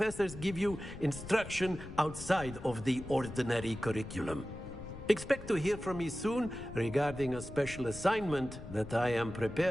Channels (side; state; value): left; noise; rumble, 12 dB below the sound